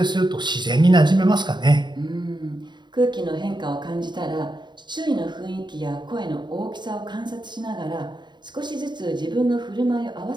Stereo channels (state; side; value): late; left; 0.22 ms